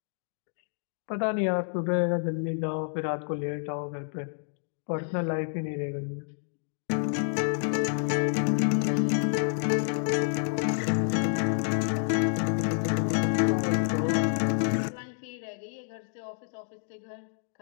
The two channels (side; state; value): right; silent; digital silence